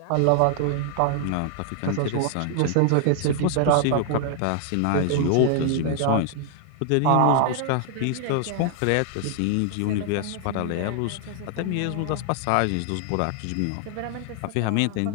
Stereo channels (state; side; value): different; both; correlation 0.00